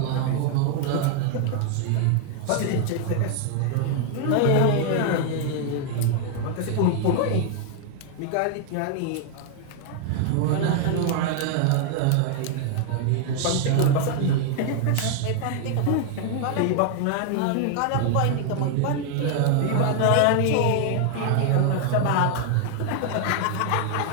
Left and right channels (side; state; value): both; different; correlation 0.00